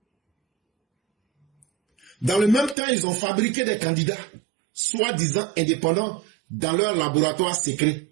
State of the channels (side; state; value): left; drops out; at 2.8 s